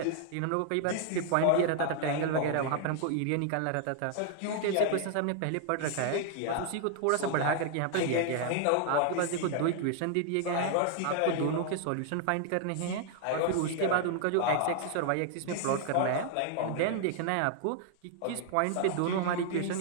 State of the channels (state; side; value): different; both; correlation 0.00